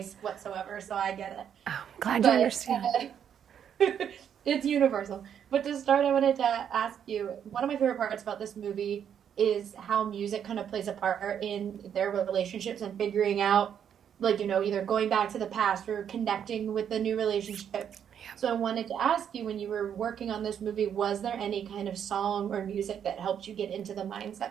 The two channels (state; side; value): quieter; left; 8.7 dB